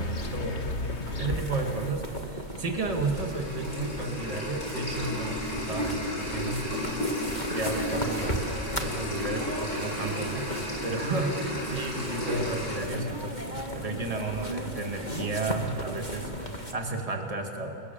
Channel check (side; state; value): right; late; 2.1 ms